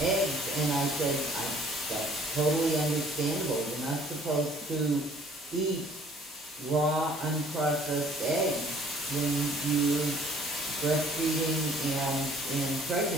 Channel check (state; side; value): normal; both; correlation 0.56